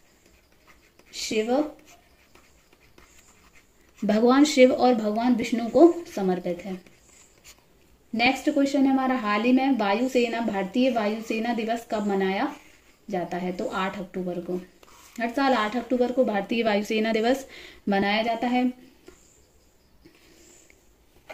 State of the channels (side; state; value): both; identical; correlation 1.00